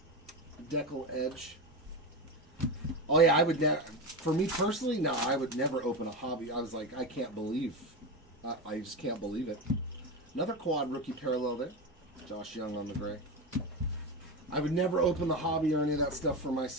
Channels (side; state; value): both; normal; correlation 0.18